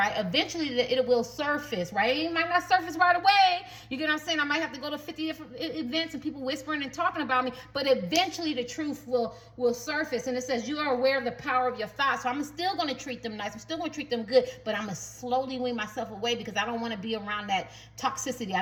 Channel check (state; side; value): identical; both; correlation 1.00